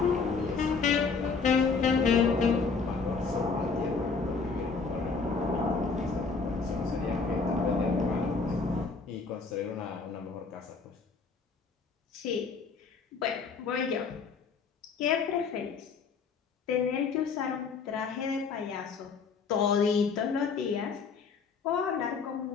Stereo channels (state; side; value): quieter; right; 4.9 dB